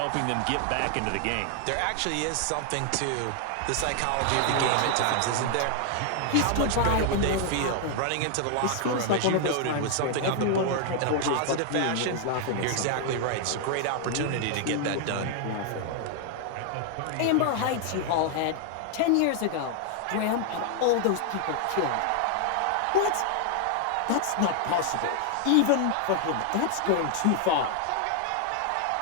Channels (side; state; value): both; different; correlation 0.00